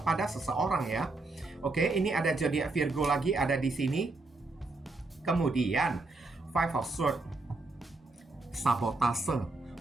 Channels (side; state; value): left; quieter; 3.3 dB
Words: seseorang ya. Oke, ini ada zodiak Virgo lagi ada di sini. Kemudian Five of Swords, sabotase,